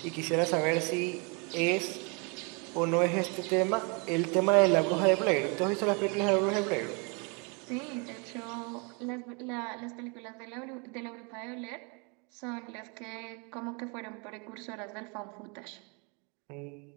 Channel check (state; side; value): quieter; left; 32.9 dB